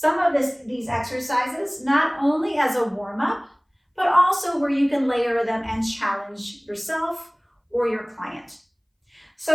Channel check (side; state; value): both; identical; correlation 1.00